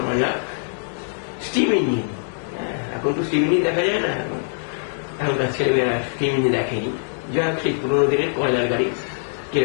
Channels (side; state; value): right; silent; 64 dB below the other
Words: যাক, স্টিম ইঞ্জিন। এখন তো স্টিম ইঞ্জিন দেখা যায় না, এখনকার ছেলেমেয়েরা স্টিম ইঞ্জিন দেখেনি। যাই হোক, সেই পুরোনো দিনের কয়লার গাড়ি